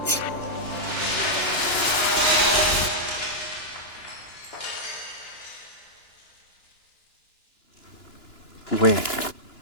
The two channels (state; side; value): late; right; 2.9 ms